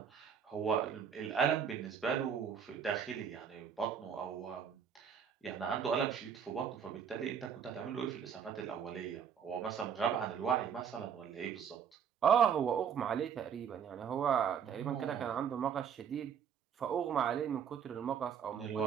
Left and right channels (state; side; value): quieter; left; 7.7 dB